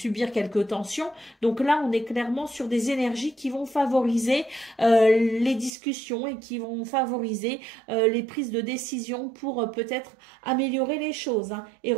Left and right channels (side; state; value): left; drops out; at 5.7 s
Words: quelques tensions. Donc là, on est clairement sur des énergies qui vont favoriser les discussions et qui vont favoriser les prises de décision pour peut-être améliorer les choses et